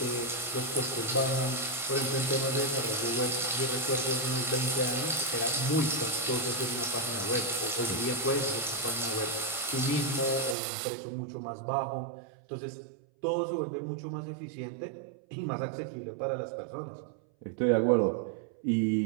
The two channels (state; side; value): drops out; left; at 10.6 s